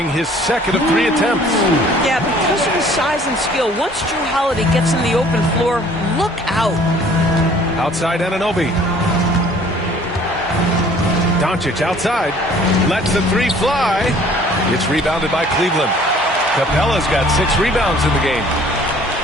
his second of 3 attempts. Yeah, because of his size and skill, once Drew Holiday gets in the open floor, look out. Outside Anunoby. Doncic outside. Lets the 3 fly. It's rebounded by Cleveland. Capella's got 6 rebounds in the game.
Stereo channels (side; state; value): both; normal; correlation 0.54